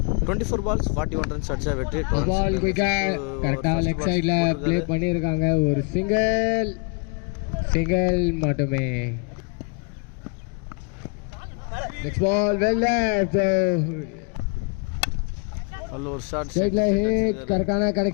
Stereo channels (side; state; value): right; quieter; 34.4 dB